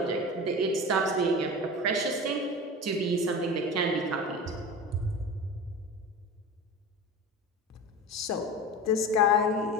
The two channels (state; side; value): normal; both; correlation 0.30